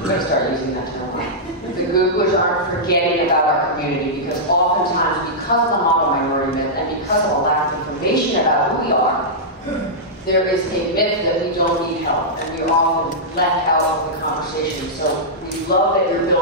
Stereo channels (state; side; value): normal; both; correlation -0.11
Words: going to start using that term, the Googlers aren't forgetting about our community because oftentimes because of the model minority myth and because of a lack of information about who we are, there is a myth that we don't need help and we are often left out of the conversation. So we love that your